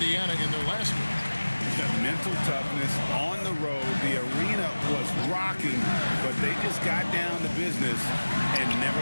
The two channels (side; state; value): both; inverted; correlation -1.00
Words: in their last game. The mental toughness on the road. The arena was rocking, but they just got down to business and never